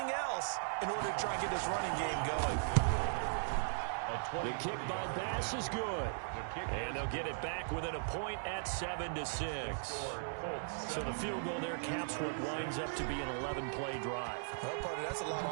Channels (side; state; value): left; silent; digital silence